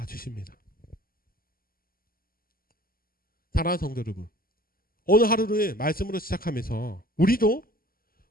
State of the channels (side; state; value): right; late; 0.42 ms